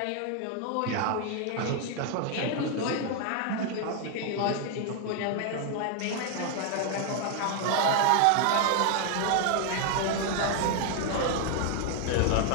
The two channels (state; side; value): different; both; correlation 0.00